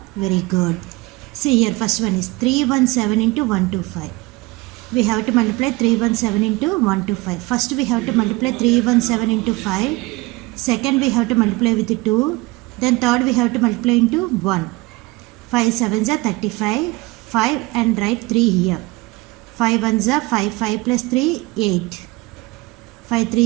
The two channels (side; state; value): left; quieter; 22.6 dB